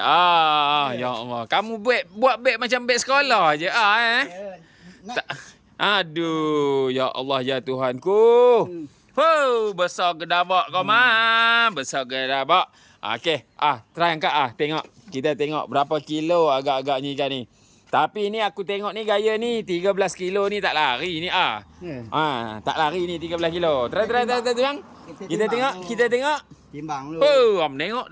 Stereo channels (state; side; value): identical; both; correlation 1.00